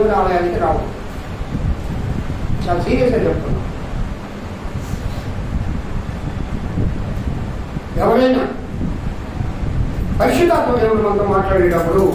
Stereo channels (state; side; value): identical; both; correlation 1.00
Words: ఆలయానికి రావు. చాలా సీరియస్గా చెప్తున్నాం. ఎవరైనా పరిశుద్ధాత్మ దేవుడు మనతో మాట్లాడేటప్పుడు